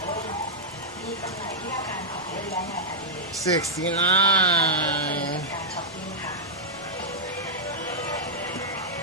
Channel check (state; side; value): normal; both; correlation -0.08